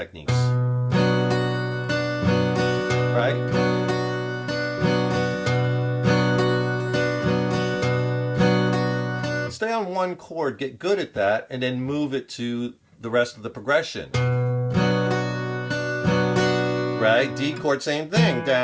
right? Stay on one chord, get good at that, and then move it to the rest of the progression. Right? D chord, same thing.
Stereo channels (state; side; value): identical; both; correlation 1.00